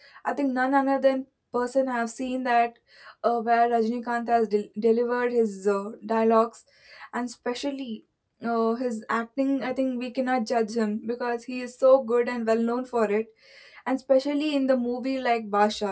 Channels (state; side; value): identical; both; correlation 1.00